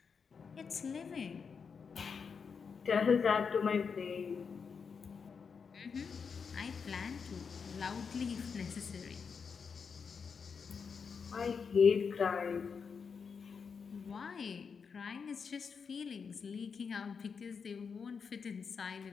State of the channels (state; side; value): quieter; right; 5.9 dB